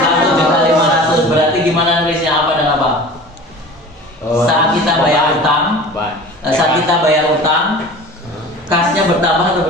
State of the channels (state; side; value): normal; both; correlation 0.39